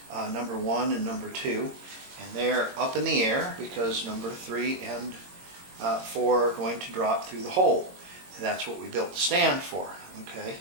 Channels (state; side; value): late; left; 22 ms